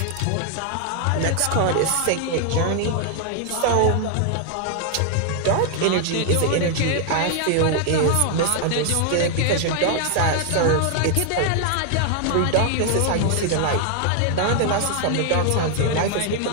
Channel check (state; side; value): different; both; correlation 0.00